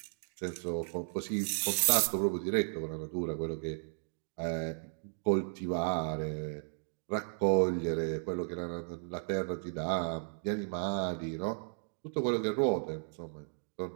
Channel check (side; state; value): left; silent; digital silence